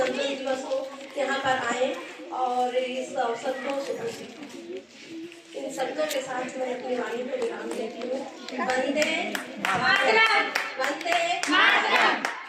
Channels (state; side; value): identical; both; correlation 1.00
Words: दिवस हो, यहाँ पर आए और इस अवसर को इन शब्दों के साथ मैं अपनी वाणी को विराम देती हूँ। वंदे मातरम, वंदे मातरम,